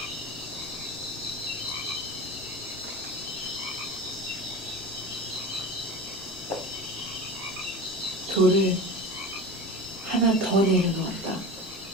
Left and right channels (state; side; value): normal; both; correlation 0.31